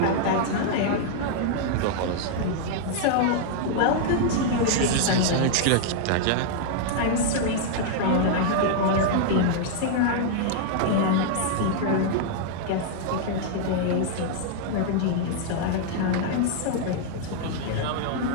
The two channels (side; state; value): both; different; correlation -0.01